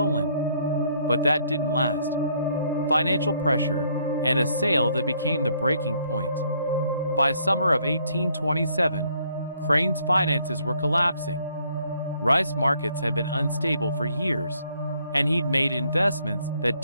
But that didn't last. Financial pressure, and a sale that became the breaking point. By summer of 1827, Crane's finances were collapsing. Rice markets had been unstable for years, and he'd made investments that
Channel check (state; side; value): inverted; both; correlation -0.68